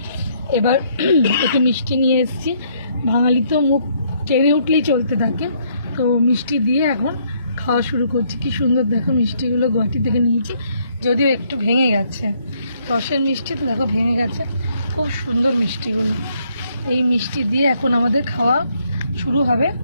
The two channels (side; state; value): both; inverted; correlation -0.70